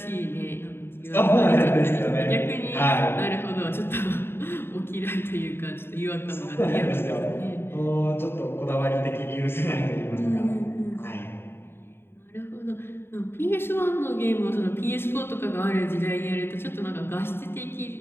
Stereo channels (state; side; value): late; right; 0.11 ms